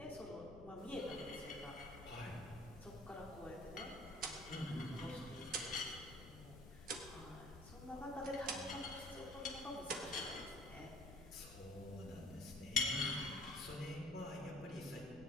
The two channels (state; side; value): noise; left; rumble, 14 dB below the sound